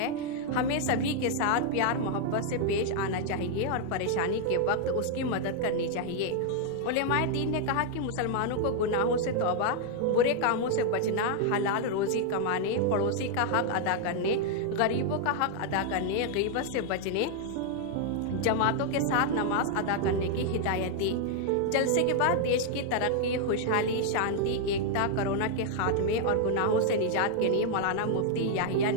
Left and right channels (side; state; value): both; different; correlation 0.00